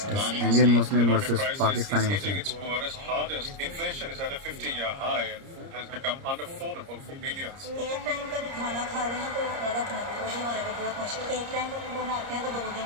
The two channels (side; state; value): left; late; 30 ms